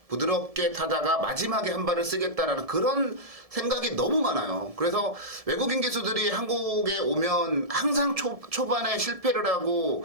부드럽게 타다가 마지막에 한 발을 쓰겠다라는 그런 생각이 너무 많아요. 그래서 외국인 기수들이 한국에 오면 항상 초반에 실패를 하고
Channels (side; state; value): left; late; 1.7 ms